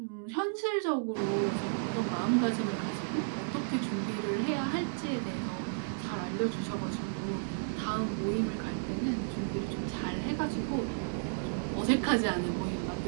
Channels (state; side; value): silent; left; digital silence